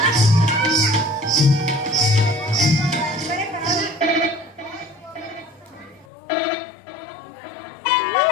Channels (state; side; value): drops out; right; at 6.1 s